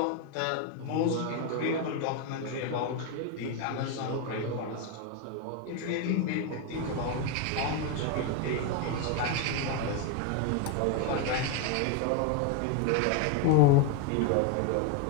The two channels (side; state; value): both; different; correlation 0.01